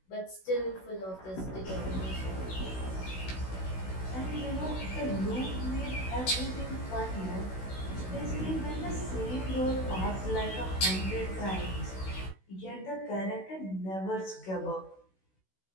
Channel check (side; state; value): right; late; 16 ms